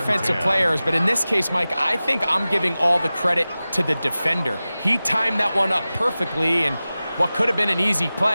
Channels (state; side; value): inverted; both; correlation -0.96